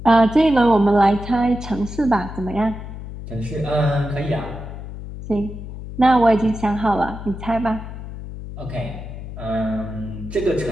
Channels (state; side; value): noise; left; hum, 10 dB below the sound